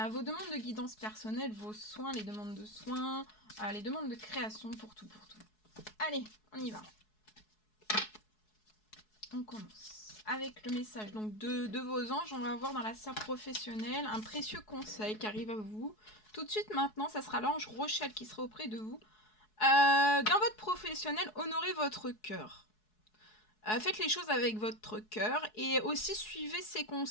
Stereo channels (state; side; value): late; right; 4.7 ms